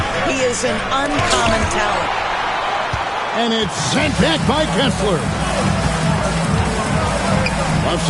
He is an uncommon talent. And it's sent back by Kessler. Left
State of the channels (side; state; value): both; identical; correlation 1.00